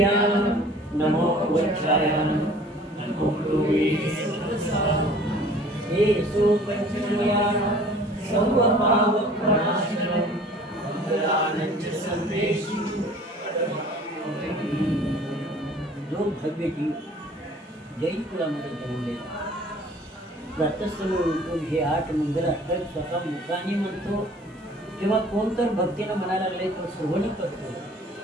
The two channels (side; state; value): both; normal; correlation 0.50